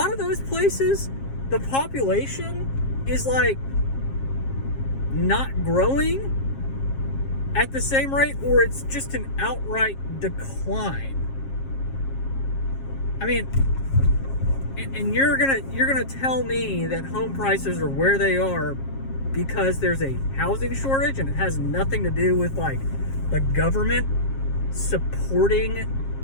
of those places, the population is like not growing at the same rate, or it's just an outright decline. I mean, and you're gonna tell me that home prices are where they are because there's a housing shortage, and it has nothing to do with like the government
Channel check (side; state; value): right; late; 7.4 ms